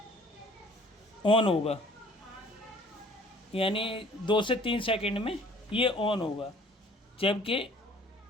ऑन होगा, यानी 2 से 3 सेकंड में ये ऑन होगा। जबकि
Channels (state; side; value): normal; both; correlation 0.54